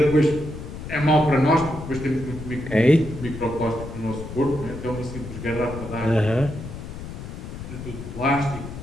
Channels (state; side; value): noise; left; rumble, 10 dB below the sound